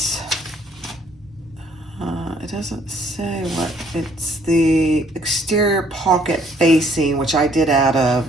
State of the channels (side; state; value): both; normal; correlation 0.63